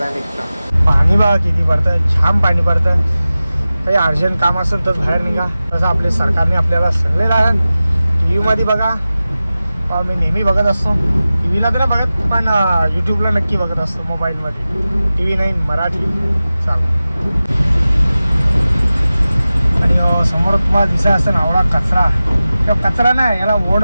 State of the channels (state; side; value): inverted; both; correlation -0.95